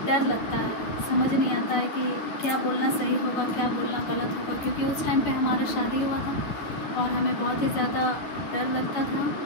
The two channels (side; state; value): right; late; 10 ms